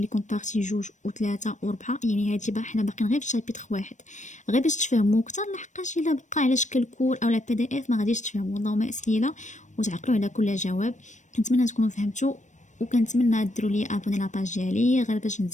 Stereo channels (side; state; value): right; late; 0.35 ms